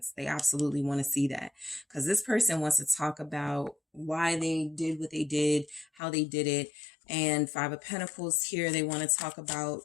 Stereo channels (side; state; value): right; drops out; at 6.0 s